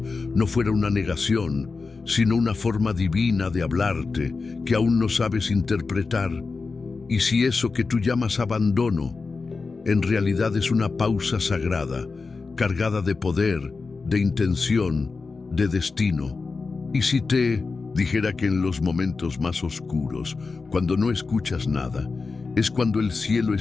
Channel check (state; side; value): quieter; right; 4.3 dB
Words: no fuera una negación, sino una forma divina de hablarte que aún no sabes interpretar? ¿Y si eso que tú llamas abandono en realidad es una pausa sagrada, cargada de poder, de intención, de destino? ¿Y si te dijera que en los momentos más oscuros, cuando no escuchas nada, es cuando el cielo